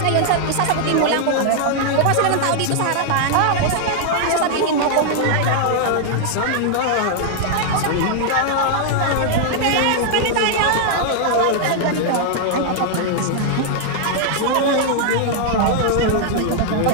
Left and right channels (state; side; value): different; both; correlation -0.01